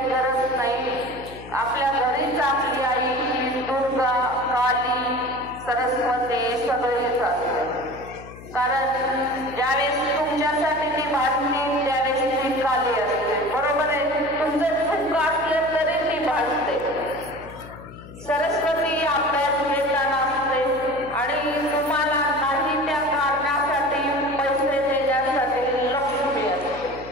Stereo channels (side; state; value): left; noise; hum, 16 dB below the sound